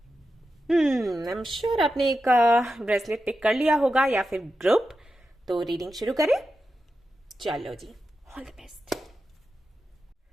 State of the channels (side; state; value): both; normal; correlation 0.90